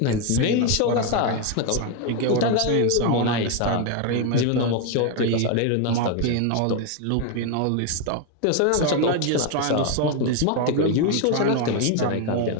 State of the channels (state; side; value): different; both; correlation 0.01